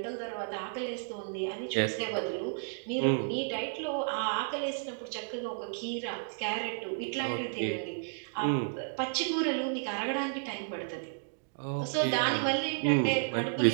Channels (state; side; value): silent; left; digital silence